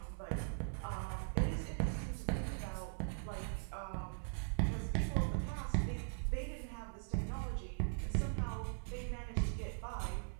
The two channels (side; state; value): left; silent; 51 dB below the other